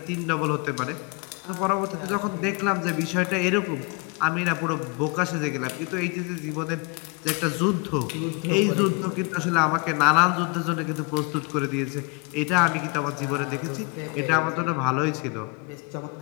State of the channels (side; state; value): right; quieter; 29.9 dB